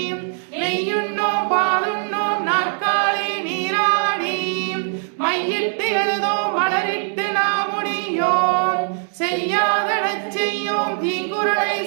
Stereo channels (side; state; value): left; silent; 55 dB below the other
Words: நெய்யுண்ணோம் பாலுண்ணோம் நாற்காலே நீராடி மையிட்டு எழுதோம் மலரிட்டு நாம் முடியோம் செய்யாதடச் செய்யோம் தீங்குறளை